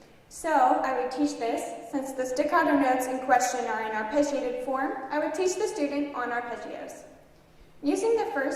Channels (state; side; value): identical; both; correlation 1.00